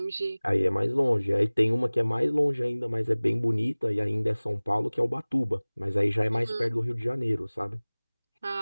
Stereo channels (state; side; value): inverted; both; correlation -1.00